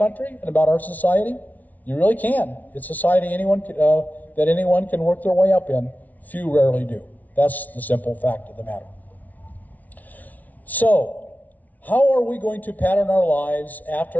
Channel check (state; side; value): late; right; 0.075 ms